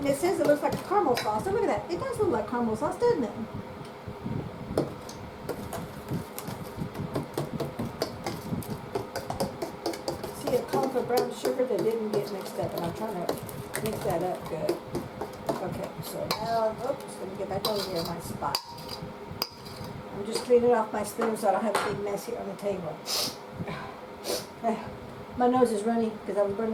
it says it looks like a caramel sauce. So look at that. It does look like caramel sauce, doesn't it? See, it called for brown sugar that didn't get mixed up, and I'm trying to mix that up good. Okay, so now, oops, let me get back over here in my spot. I'm just cleaning off my spoon so I don't have a big mess here on the table. My nose is runny because I was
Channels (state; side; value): identical; both; correlation 1.00